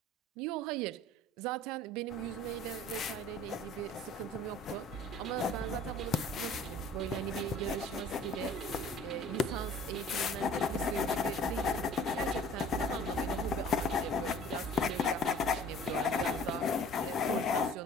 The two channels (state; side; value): normal; both; correlation 0.49